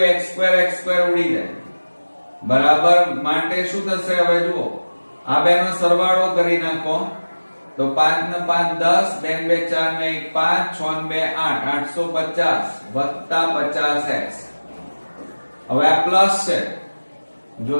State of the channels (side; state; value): both; inverted; correlation -1.00